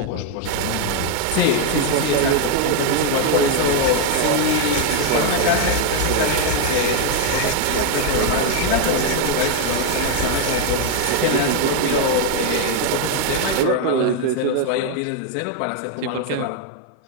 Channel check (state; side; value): different; both; correlation 0.00